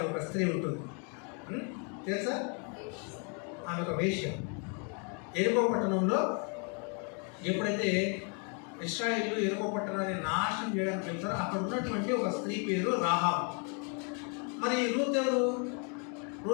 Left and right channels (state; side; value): quieter; right; 37.8 dB